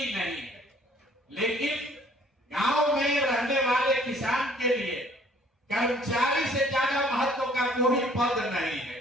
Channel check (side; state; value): both; normal; correlation 0.58